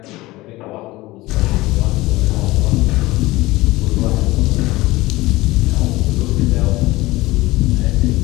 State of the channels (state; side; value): quieter; right; 19.4 dB